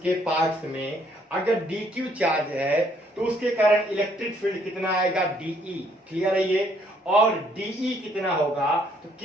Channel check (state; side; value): normal; both; correlation 0.67